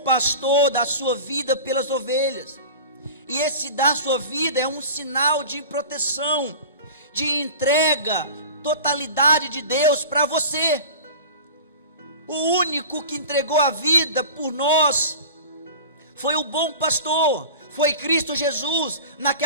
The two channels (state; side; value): inverted; both; correlation -0.36